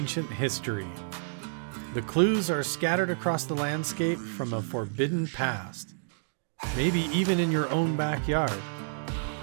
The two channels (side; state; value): left; silent; digital silence